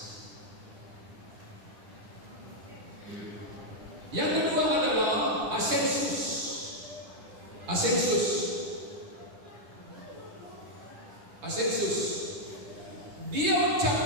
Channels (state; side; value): late; left; 10 ms